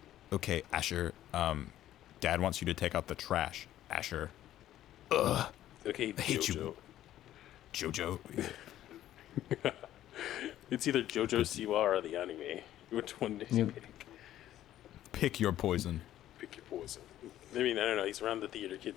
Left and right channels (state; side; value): quieter; right; 12.8 dB